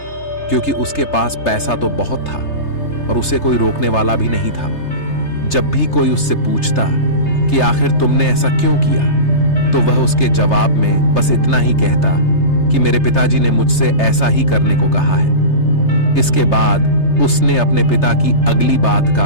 क्योंकि उसके पास पैसा तो बहुत था और उसे कोई रोकने वाला भी नहीं था। जब भी कोई उससे पूछता कि आखिर तुमने ऐसा क्यों किया, तो वह उसके जवाब में बस इतना ही कहता कि मेरे पिताजी ने मुझसे ऐसा ही करने को कहा है। इसके बाद उसने अपने पिता की अगली बात का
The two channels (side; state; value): right; late; 3.3 ms